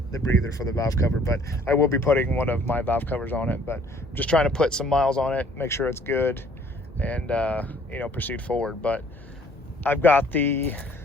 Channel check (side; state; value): both; normal; correlation 0.58